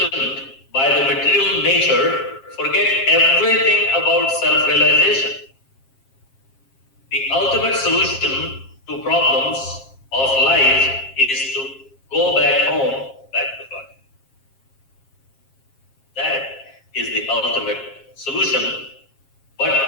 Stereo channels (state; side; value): late; right; 7.4 ms